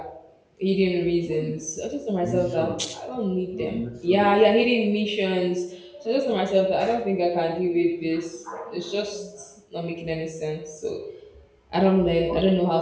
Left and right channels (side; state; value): both; identical; correlation 1.00